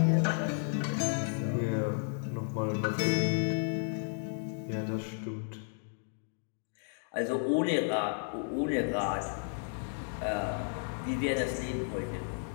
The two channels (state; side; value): silent; right; 56 dB below the other